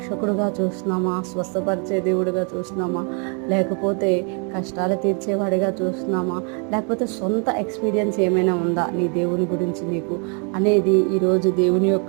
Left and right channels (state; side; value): quieter; left; 37.2 dB